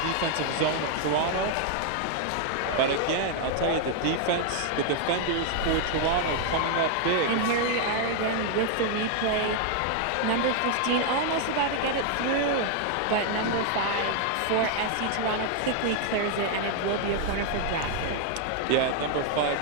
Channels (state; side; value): different; both; correlation 0.00